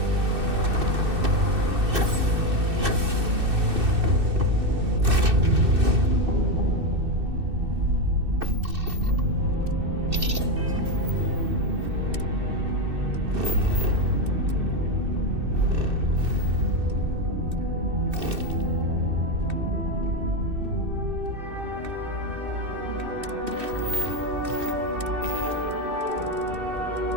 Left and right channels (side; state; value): left; late; 2.6 ms